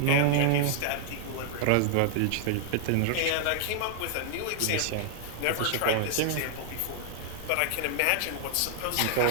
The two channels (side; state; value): both; different; correlation -0.01